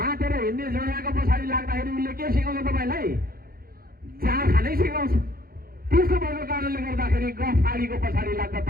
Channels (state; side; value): late; left; 0.43 ms